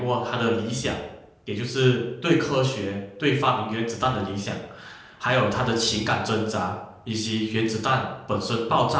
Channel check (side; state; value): both; identical; correlation 1.00